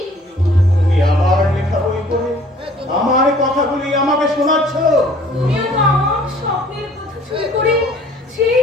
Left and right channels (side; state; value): both; normal; correlation 0.54